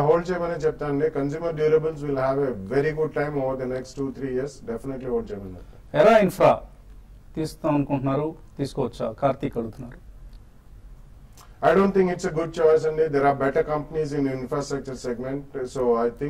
హోల్డ్ చేయమని చెప్తానండి. Consumer durables will have a very good time over the next 2-3 years. Definitely hold చేయమని చెప్తాను. ఎరా ఇన్ఫ్రా తీస్తాం అనుకుంటున్నారు, తీసుకోవచ్చా? కార్తీక్ అడుగుతున్నారు. I don't think it's a good choice and there are better companies in infrastructure segment. So I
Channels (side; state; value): both; identical; correlation 1.00